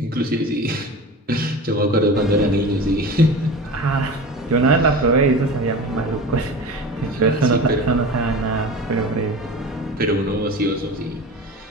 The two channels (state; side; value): normal; both; correlation 0.33